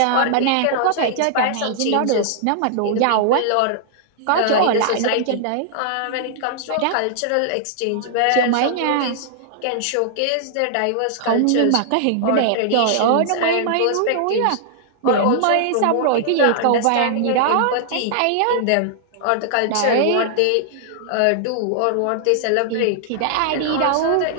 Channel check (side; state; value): both; different; correlation -0.01